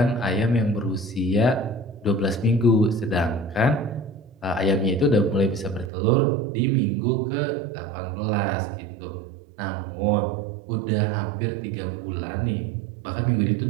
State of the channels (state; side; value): drops out; left; at 5.9 s